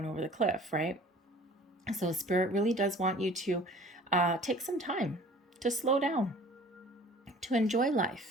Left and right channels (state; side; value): normal; both; correlation 0.48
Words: over the cliff, right? So Spirit really does want you to take some time to slow down, to enjoy